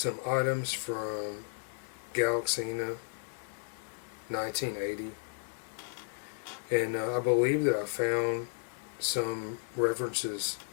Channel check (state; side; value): silent; right; digital silence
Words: items from Galaxina 1980, and I believe that I found some references